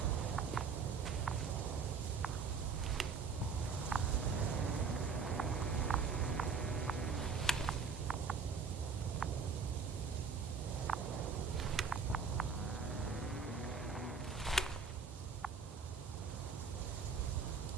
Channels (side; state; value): left; quieter; 5.4 dB